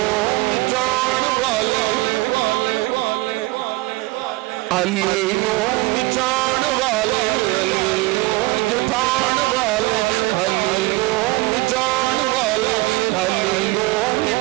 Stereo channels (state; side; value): quieter; left; 21.4 dB